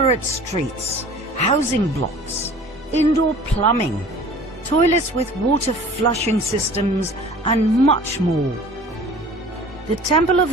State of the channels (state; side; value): normal; both; correlation 0.46